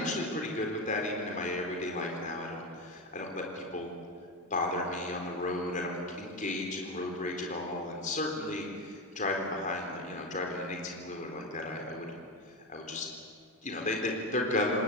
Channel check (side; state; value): both; normal; correlation 0.16